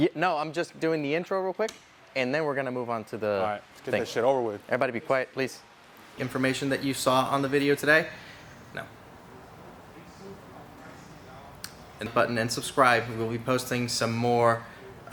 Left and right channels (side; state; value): both; identical; correlation 1.00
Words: no, I'm just doing the intro real quick, and then we're going to move on to the All right, let's get that shit over with. Everybody be quiet, please. Information that you saw on the video today? No. And button and subscribe. We will be posting some more.